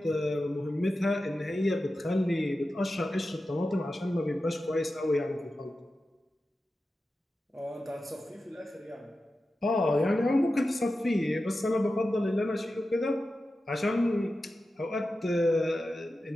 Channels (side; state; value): both; normal; correlation 0.92